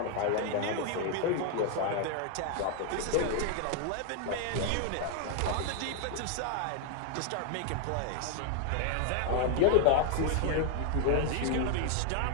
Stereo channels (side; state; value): both; different; correlation 0.00